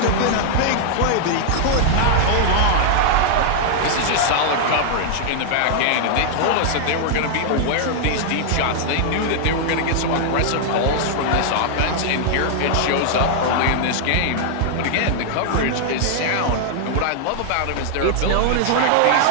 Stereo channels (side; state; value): both; different; correlation -0.01